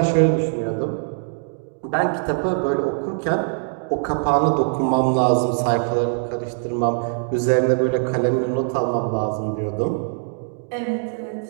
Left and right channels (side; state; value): left; silent; digital silence